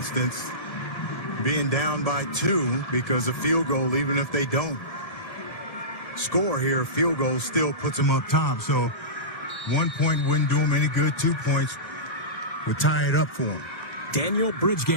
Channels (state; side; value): late; right; 1.5 ms